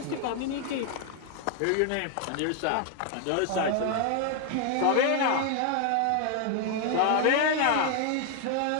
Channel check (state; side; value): different; both; correlation 0.00